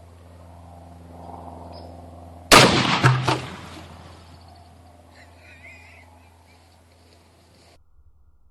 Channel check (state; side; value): identical; both; correlation 1.00